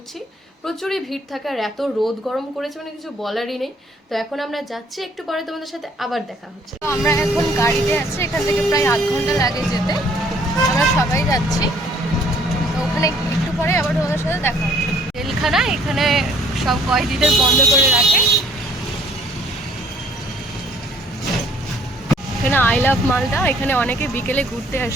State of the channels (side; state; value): both; normal; correlation 0.59